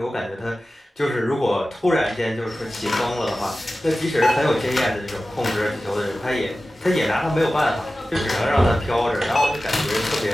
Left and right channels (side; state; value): both; normal; correlation 0.95